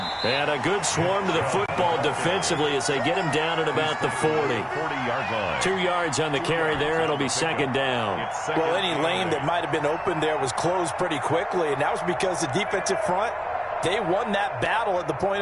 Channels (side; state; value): both; identical; correlation 1.00